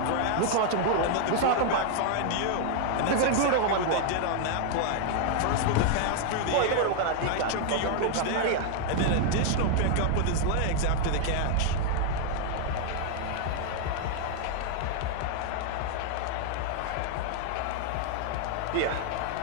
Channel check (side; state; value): both; different; correlation 0.00